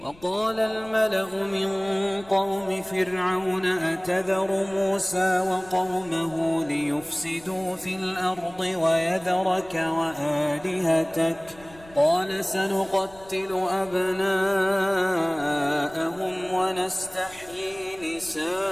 وقال الملأ من قوم فرعون أتذر موسى وقومه ليفسدوا في الأرض ويذرك وآلهتك قال سنقتل أبناءهم ونستحيي نساءهم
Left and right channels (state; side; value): noise; left; rumble, 24 dB below the sound